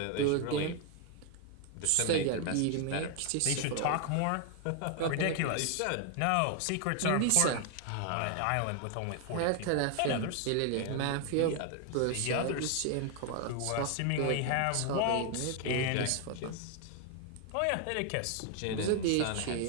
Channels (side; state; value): both; different; correlation 0.00